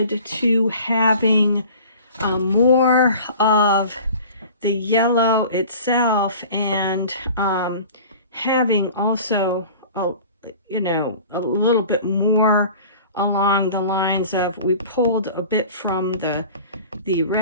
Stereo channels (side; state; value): both; inverted; correlation -0.43